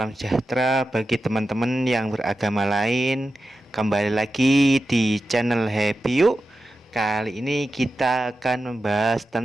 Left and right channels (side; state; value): both; normal; correlation 0.92